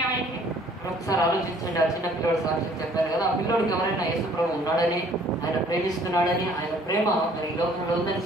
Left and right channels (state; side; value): normal; both; correlation 0.57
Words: आएंगे. ఒకసారి ఆలోచించండి, ఆ చిన్న పిల్లడు సాక్ష్యం చెప్పారు కదా, ఆ పిల్లడికి ఎవరైనా యేసు ప్రభు ఉన్నాడని, ఆయన ప్రేమిస్తున్నాడని, ఆయన ప్రేమ మరి ఈ లోకంలో ఉందని